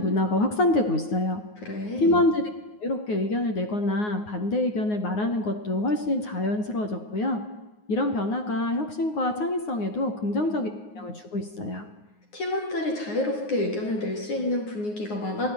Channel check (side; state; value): right; late; 9.5 ms